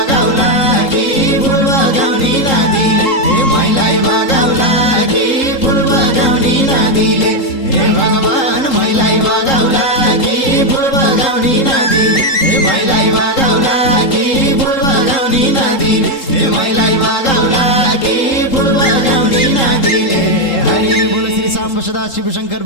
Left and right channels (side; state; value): right; late; 3.8 ms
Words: कि फुल बगाउने नदीले ए मैलाई बगाउला कि फुल बगाउने नदीले हे भगवान मैलाई बगाउला कि फुल बगाउने नदीले हे मैलाई बगाउला कि फुल बगाउने नदीले हे मैलाई बगाउला कि फुल बगाउने नदीले हरि बोल श्री सांब सदा शिव शंकर